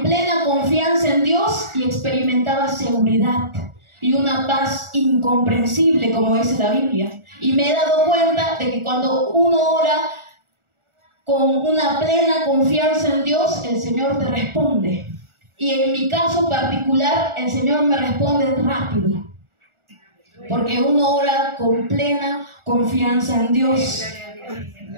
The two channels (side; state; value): left; late; 1.4 ms